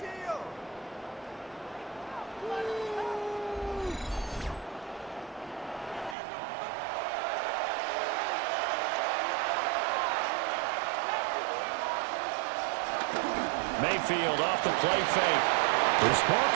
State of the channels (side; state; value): left; drops out; at 6.2 s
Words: Mayfield off the play fake. This ball